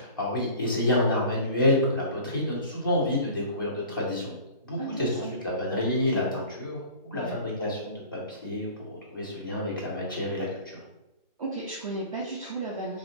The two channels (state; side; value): inverted; both; correlation -0.43